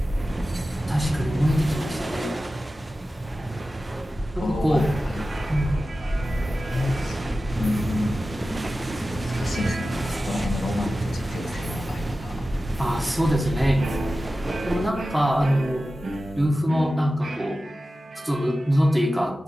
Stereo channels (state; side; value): normal; both; correlation 0.94